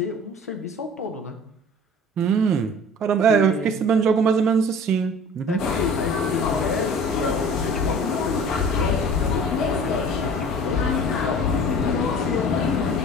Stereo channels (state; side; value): normal; both; correlation 0.44